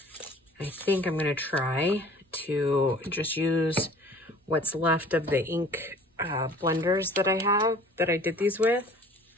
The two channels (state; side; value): normal; both; correlation 0.49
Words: I think I'm going to try to just use what's left of the ink blenders that I have, that I did these with.